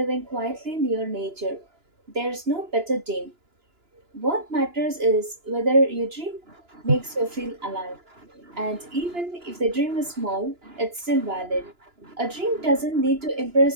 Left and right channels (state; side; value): late; left; 2.9 ms